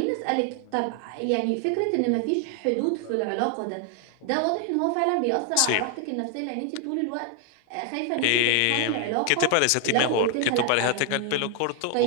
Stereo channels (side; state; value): both; different; correlation 0.00